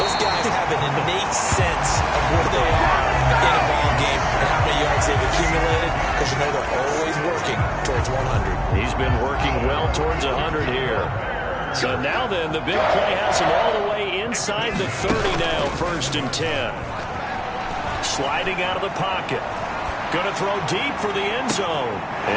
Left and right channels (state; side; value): identical; both; correlation 1.00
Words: Those guys have an innate sense of where they are in a ball game and how many yards they've accumulated because you know they're always working towards 100. He's been working well towards 100 here. So now then, the big play has him all the way inside the 30 now, 1st and 10. Sliding out of the pocket. Going to throw deep for the end zone.